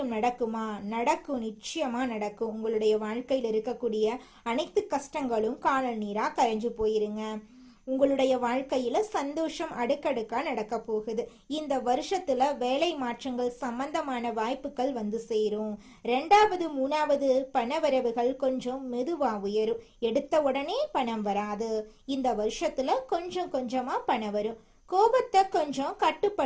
நடக்குமா? நடக்கும், நிச்சயமா நடக்கும். உங்களுடைய வாழ்க்கையில் இருக்கக்கூடிய அனைத்து கஷ்டங்களும் காணல் நீரா கரைஞ்சு போயிருங்க. உங்களுடைய வாழ்க்கையில சந்தோஷம் அடுக்கடுக்கா நடக்க போகுது. இந்த வருஷத்துல வேலை மாற்றங்கள் சம்பந்தமான வாய்ப்புகள் சேரும். 2வது 3வது பணவரவுகள் கொஞ்சம் மெதுவா உயரும். எடுத்த உடனே பணம் வராது. இந்த வருஷத்துல கொஞ்சம் கொஞ்சமா பணம் வரும். கோபத்தை கொஞ்சம்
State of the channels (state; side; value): identical; both; correlation 1.00